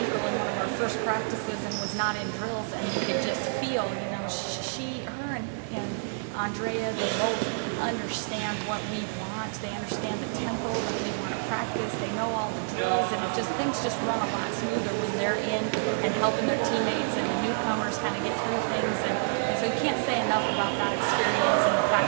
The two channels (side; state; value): left; silent; digital silence